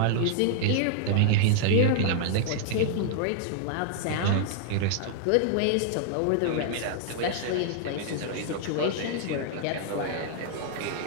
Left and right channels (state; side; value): different; both; correlation -0.01